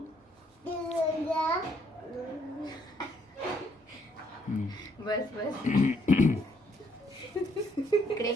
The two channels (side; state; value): both; normal; correlation 0.69